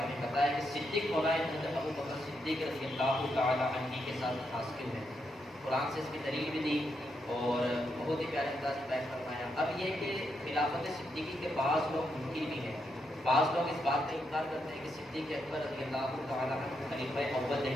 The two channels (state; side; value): normal; both; correlation 0.81